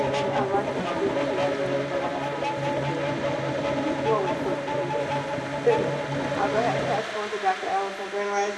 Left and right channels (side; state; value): both; identical; correlation 1.00